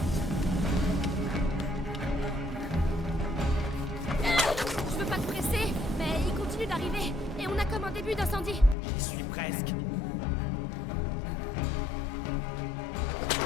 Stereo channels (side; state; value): right; drops out; at 8.8 s